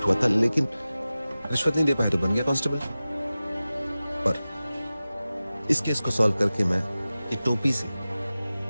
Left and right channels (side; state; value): both; inverted; correlation -0.96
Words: हुआ था, लेकिन रिश्वत नहीं दे पाया तो बन गया कांस्टेबल। पर इस केस को सॉल्व करके मैं ये टोपी से